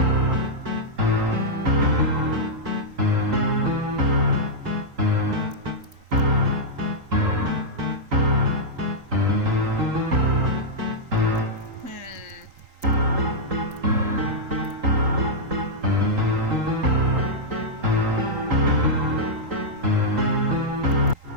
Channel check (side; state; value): left; late; 3.9 ms